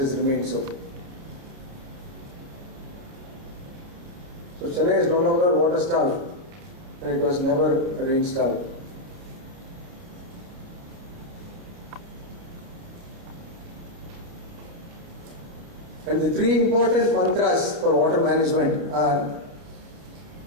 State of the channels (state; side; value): late; left; 30 ms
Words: remained so. So Chennai is no longer water starved, and it was never rain starved. And the three important mantras for water management are